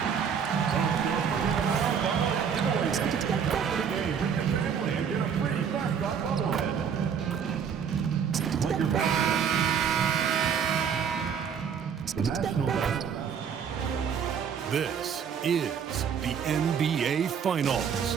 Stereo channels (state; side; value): quieter; left; 7.3 dB